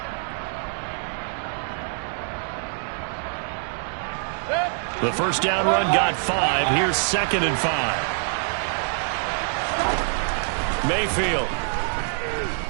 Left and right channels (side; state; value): left; silent; 60 dB below the other